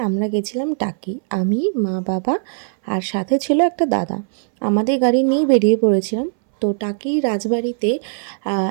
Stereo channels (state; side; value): silent; left; 63 dB below the other